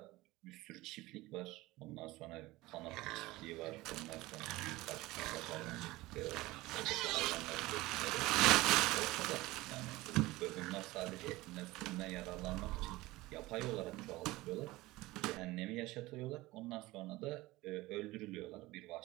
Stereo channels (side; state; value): left; quieter; 19.4 dB